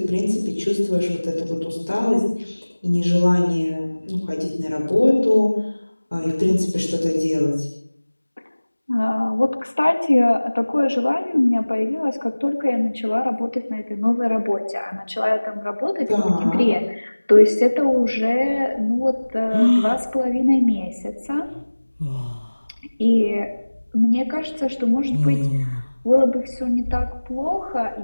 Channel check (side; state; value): both; inverted; correlation -1.00